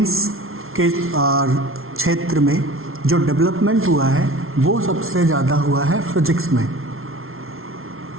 के क्षेत्र में जो डेवलपमेंट हुआ है वो सबसे ज़्यादा हुआ है फिजिक्स में,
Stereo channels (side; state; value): left; late; 0.61 ms